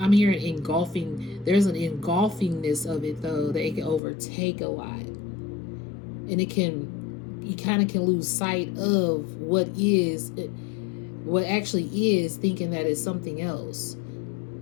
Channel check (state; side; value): drops out; right; at 4.0 s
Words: I'm hearing engulfing. There's an engulfingness of it though, that it can overtake a lot, and you kind of can lose sight of what actually is, thinking that it's something else,